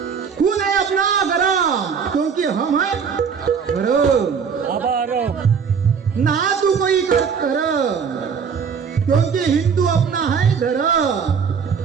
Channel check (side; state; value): left; quieter; 6.4 dB